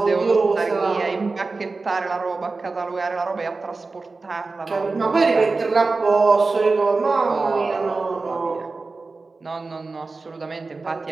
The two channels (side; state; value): left; quieter; 3.8 dB